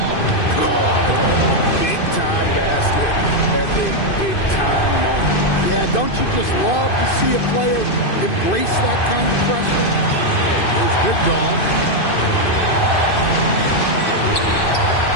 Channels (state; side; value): late; right; 2.5 ms